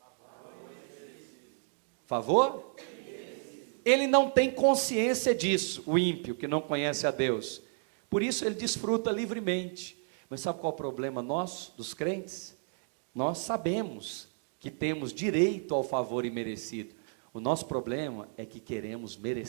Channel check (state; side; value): silent; left; 56 dB below the other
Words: Favor? Ele não tem consciência disso, o ímpio que não conhece a Deus. Por isso ele desfruta livremente. Mas sabe qual é o problema nosso, dos crentes? Nós sabemos que temos direito ao favor imerecido. O nosso problema é que queremos